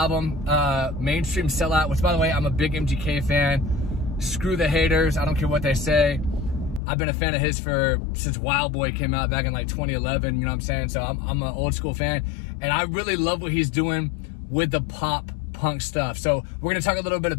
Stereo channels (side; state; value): right; drops out; at 6.8 s